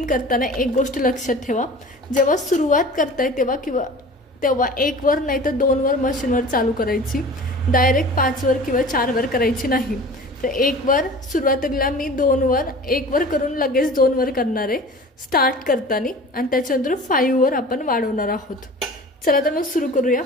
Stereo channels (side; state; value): both; normal; correlation 0.40